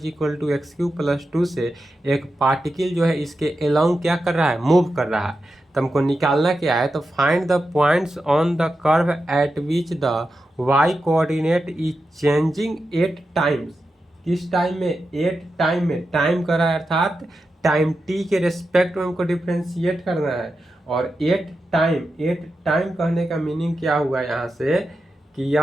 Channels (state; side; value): normal; both; correlation 0.89